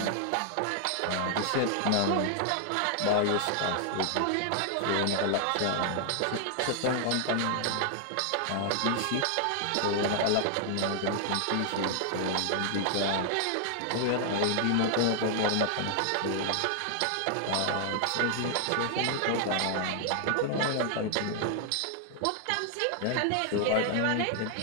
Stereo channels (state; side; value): different; both; correlation 0.00